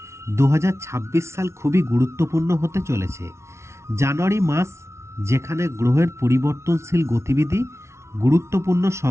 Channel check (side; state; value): left; late; 0.13 ms